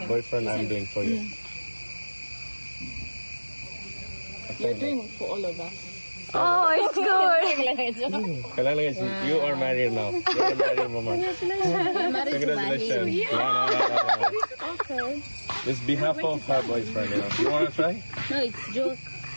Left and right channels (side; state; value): both; inverted; correlation -1.00